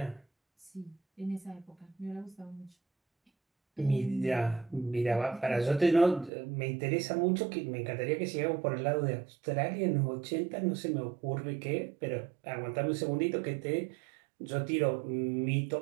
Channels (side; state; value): left; drops out; at 6.3 s